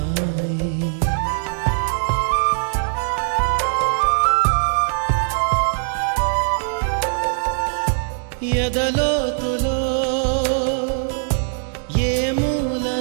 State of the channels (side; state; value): left; silent; 63 dB below the other